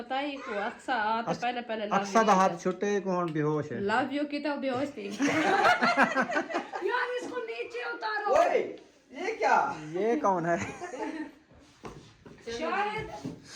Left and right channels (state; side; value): identical; both; correlation 1.00